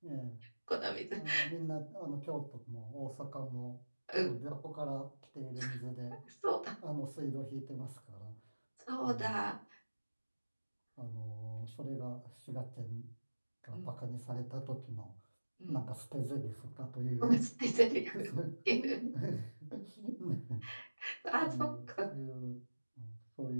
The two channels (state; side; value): inverted; both; correlation -1.00